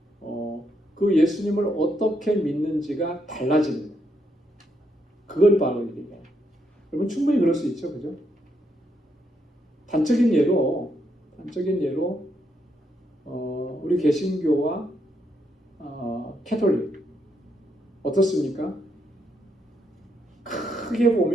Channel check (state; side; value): normal; both; correlation 0.78